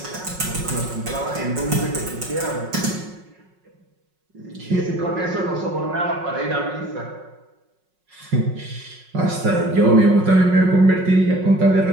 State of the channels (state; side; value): late; left; 5.4 ms